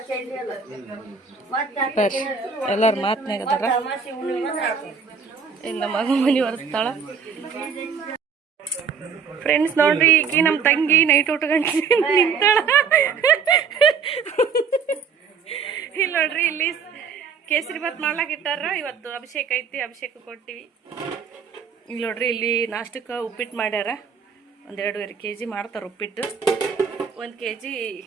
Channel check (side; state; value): left; quieter; 5.9 dB